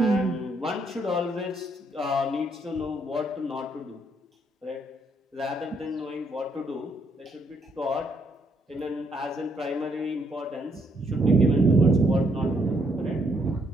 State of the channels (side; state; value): both; normal; correlation 0.72